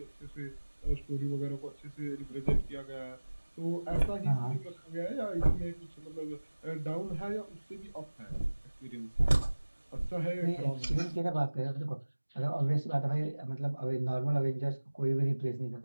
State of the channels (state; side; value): inverted; both; correlation -1.00